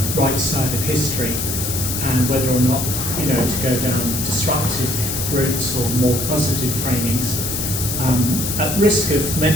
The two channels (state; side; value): noise; left; hiss, 3 dB below the sound